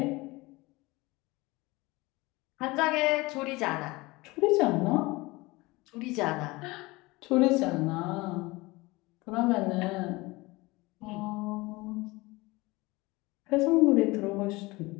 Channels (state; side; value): quieter; right; 22.4 dB